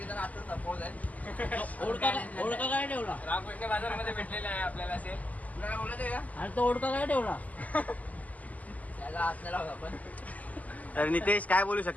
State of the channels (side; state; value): right; late; 0.076 ms